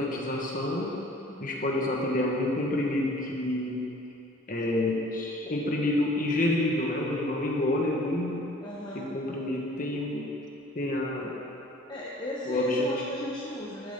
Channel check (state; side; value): normal; both; correlation 0.51